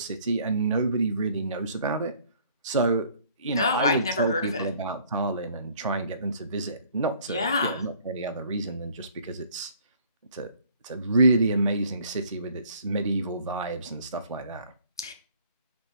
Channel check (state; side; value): inverted; both; correlation -0.58